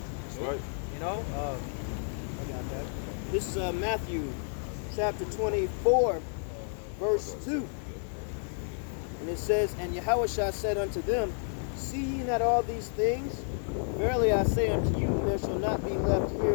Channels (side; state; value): right; silent; 57 dB below the other